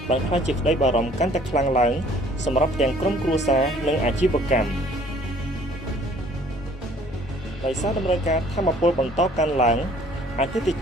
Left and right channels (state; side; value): normal; both; correlation 0.56